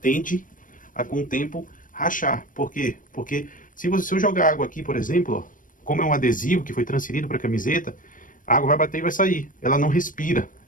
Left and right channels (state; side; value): late; right; 0.39 ms